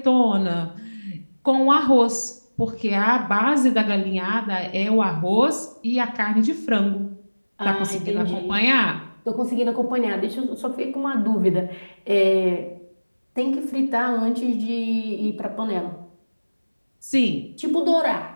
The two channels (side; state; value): both; inverted; correlation -1.00